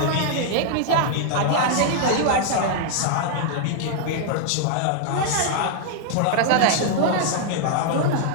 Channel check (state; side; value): different; both; correlation -0.01